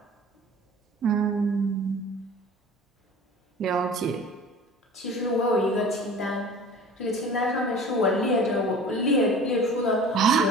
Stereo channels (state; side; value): normal; both; correlation 0.42